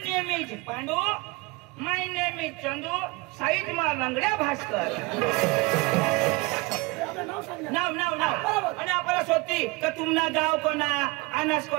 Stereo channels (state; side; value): quieter; left; 25.0 dB